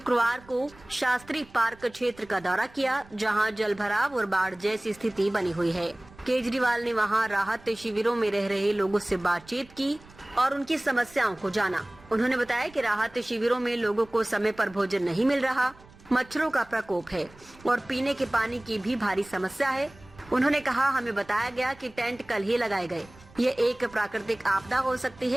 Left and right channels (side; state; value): right; noise; rumble, 24 dB below the sound